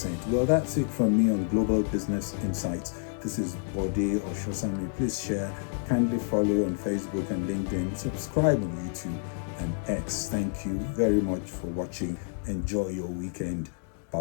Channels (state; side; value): silent; right; digital silence